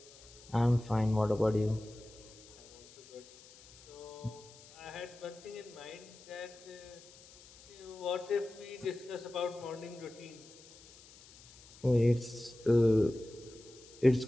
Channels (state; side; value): noise; left; hiss, 22 dB below the sound